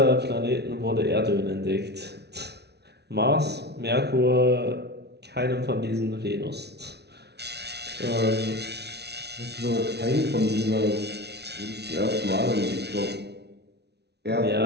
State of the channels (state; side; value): late; left; 0.49 ms